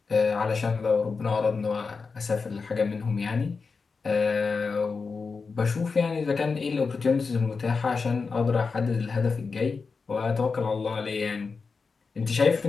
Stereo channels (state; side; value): quieter; right; 4.7 dB